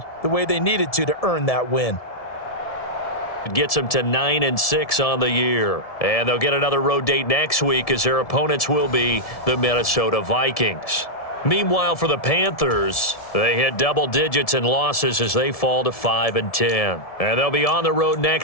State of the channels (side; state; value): right; late; 1.7 ms